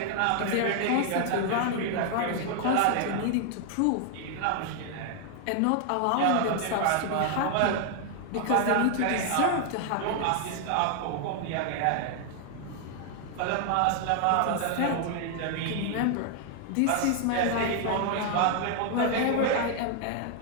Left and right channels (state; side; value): different; both; correlation 0.00